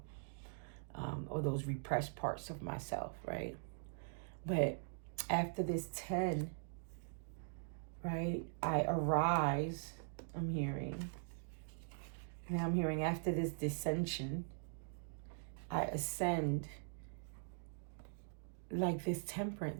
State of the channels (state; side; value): silent; left; digital silence